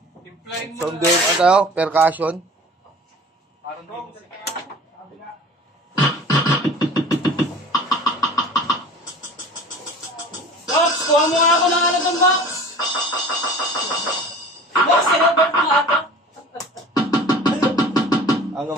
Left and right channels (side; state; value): both; normal; correlation 0.42